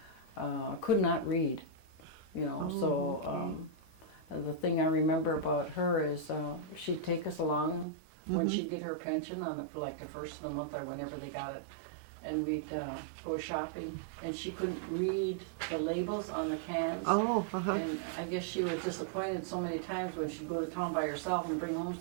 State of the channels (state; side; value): drops out; left; at 7.9 s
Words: could not read, you know. The thing I remember about her is she'd take us along when she'd get her pension for like the first of the month or whenever they got it, and we'd go shopping, and she couldn't read the labels on the cans. Oh, And I guess she was disappointed so many times when she'd go to town by herself and bring home